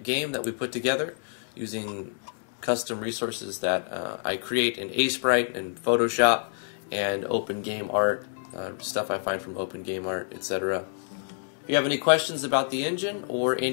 game that we put together using custom resources that I create in Sprite and Photoshop and Open Game Art, stuff I find from Open Game Art, etc. If you have any questions about the engine or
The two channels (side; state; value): right; silent; 57 dB below the other